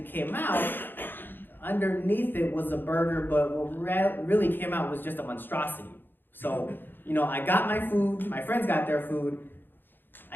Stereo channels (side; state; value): right; late; 0.096 ms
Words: came out, underneath it was a burger, but what really came out was just a monstrosity. So, I got my food, my friends got their food.